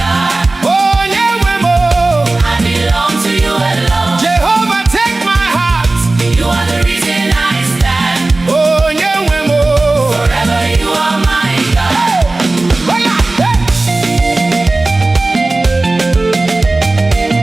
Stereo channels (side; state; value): left; quieter; 3.1 dB